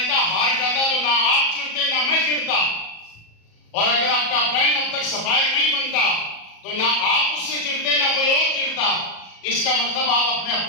हार जाता तो ना आप चिढ़ते ना मैं चिढ़ता। और अगर आपका अपरायण अब तक सफायर नहीं बनता तो ना आप उससे चिढ़ते ना कोई और चिढ़ता। इसका मतलब आप अपने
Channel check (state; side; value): late; right; 37 ms